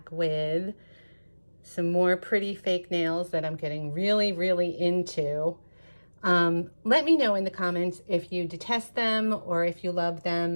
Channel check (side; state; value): both; inverted; correlation -1.00